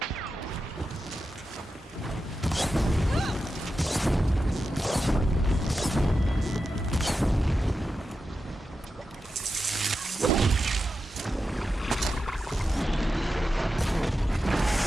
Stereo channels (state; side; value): normal; both; correlation 0.90